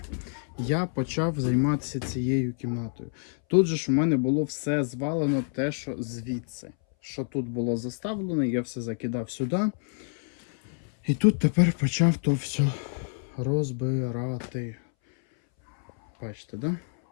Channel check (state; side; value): silent; right; 60 dB below the other